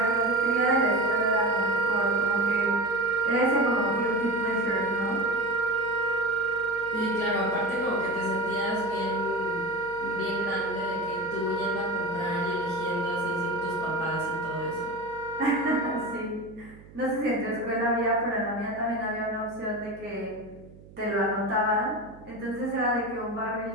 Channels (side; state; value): right; noise; hum, 21 dB below the sound